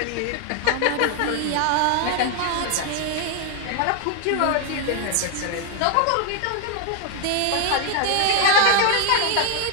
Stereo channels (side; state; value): both; different; correlation 0.00